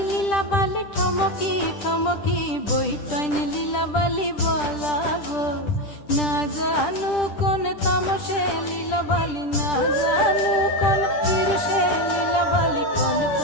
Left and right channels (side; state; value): right; late; 10 ms